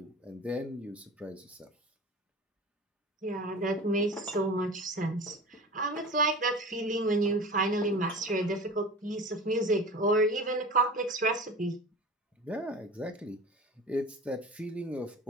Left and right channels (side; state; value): both; normal; correlation 0.35